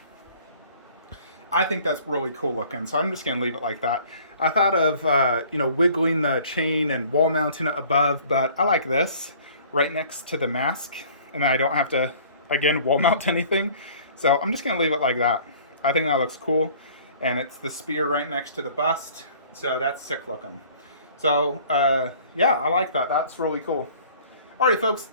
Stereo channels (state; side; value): inverted; both; correlation -0.51